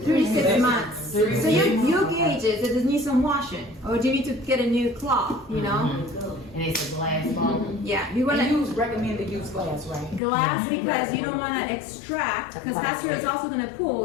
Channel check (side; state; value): right; drops out; at 10.2 s